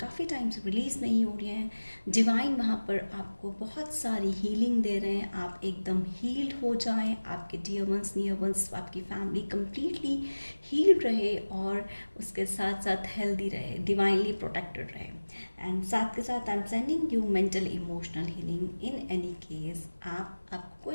टाइम से रिलीज़ नहीं हो रहे हैं, डिवाइन वहाँ पर आपको बहुत सारी हीलिंग दे रहे हैं। आप एकदम हील्ड हो जाएं, आपके डियर वंस, नियर वंस, आपकी फैमिली कंप्लीटली हील्ड रहे और उसके साथ साथ हेल्दी रहे, डिवाइनली प्रोटेक्टेड रहे। एंड साथ के साथ I am sending you mental emotional healing. In any case आपको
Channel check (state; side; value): inverted; both; correlation -1.00